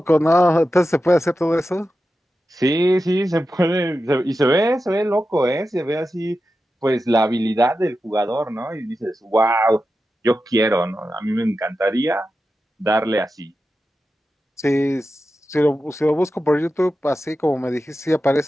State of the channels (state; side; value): normal; both; correlation 0.91